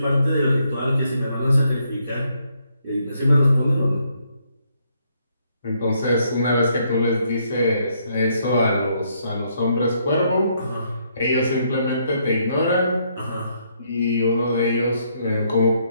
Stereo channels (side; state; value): both; inverted; correlation -0.73